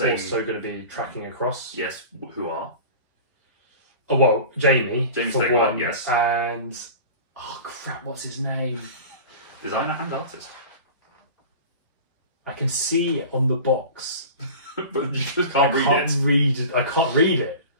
Also going to be tracking across. Yes, who are? Oh, well, Jamie for Stegmaier, one. yes. And... Oh, crap, what's his name? Designer and artist. I can see it on the box. But you just can't read it. I can't read it.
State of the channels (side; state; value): both; inverted; correlation -0.36